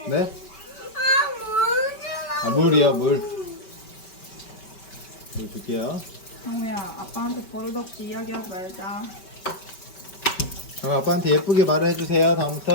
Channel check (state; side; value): late; right; 5.2 ms